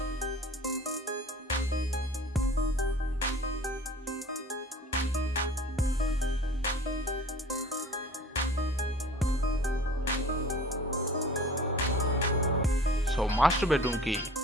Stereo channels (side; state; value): both; normal; correlation 0.45